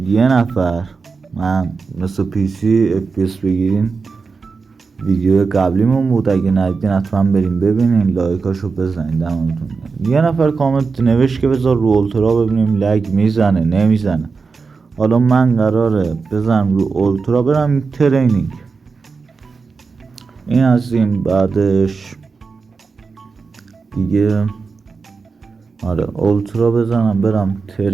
یه نفر، من مثل پی سی FPS بگیرین، ویدیو قبلیمون بود. اگه ندیدین حتما بریم ببینین، لایکاشو بزنین دمتون. یه نفر کامنت نوشت که بذار رو اولترا ببینیم لگ میزنه نمیزنه. حالا من قراره بزنم رو اولترا برم ترینینگ. این از این. بعدش دیگه اولترا بزنم برم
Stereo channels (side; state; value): left; quieter; 4.7 dB